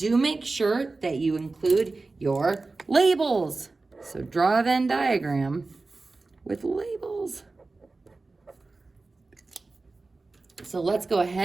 make sure that you include your labels. So draw a Venn diagram with labels. So let's go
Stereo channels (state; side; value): quieter; left; 3.6 dB